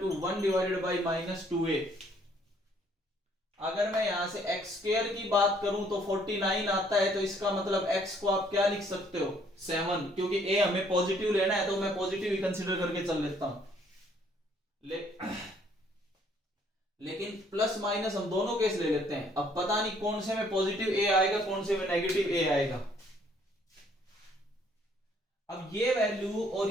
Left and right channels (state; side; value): normal; both; correlation 0.64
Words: 1 divided by minus 2a। अगर मैं यहां से एक्स स्क्वायर की बात करूं तो 49 आता है, तो इसका मतलब x को आप क्या लिख सकते हो, 7, क्योंकि a हमें पॉजिटिव लेना है तो मैं पॉजिटिव ही कंसीडर करके चल लेता हूं। लेकिन प्लस माइनस हम दोनों केस ले लेते हैं, अब पता नहीं कौन से में पॉजिटिव a आएगा कौन से में नेगेटिव a आएगा। अब ये वैल्यू और